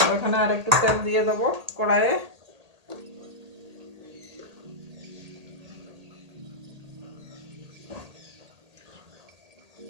এখানে আর একটু তেল দিয়ে দেবো কড়াইয়ে।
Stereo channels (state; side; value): late; left; 1.8 ms